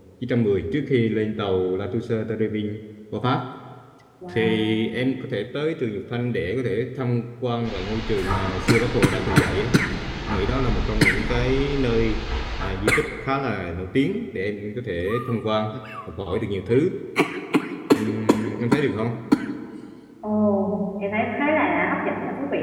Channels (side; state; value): both; identical; correlation 1.00